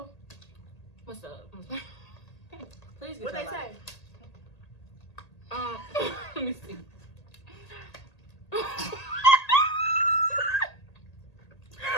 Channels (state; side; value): late; right; 1.8 ms